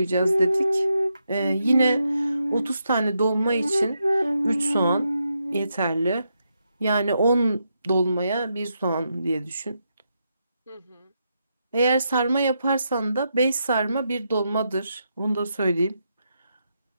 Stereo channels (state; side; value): inverted; both; correlation -0.82